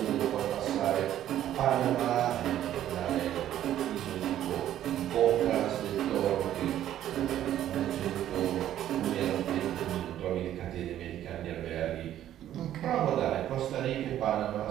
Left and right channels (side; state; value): left; quieter; 11.9 dB